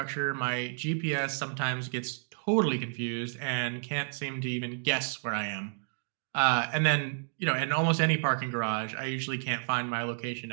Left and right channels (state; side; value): silent; left; digital silence